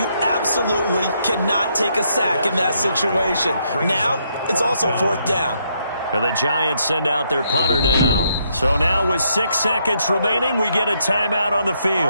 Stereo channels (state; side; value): inverted; both; correlation -0.75